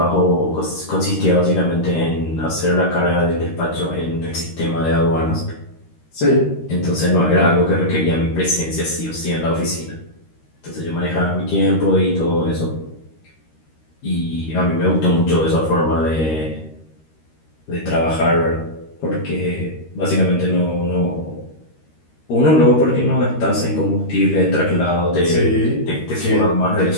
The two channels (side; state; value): right; late; 13 ms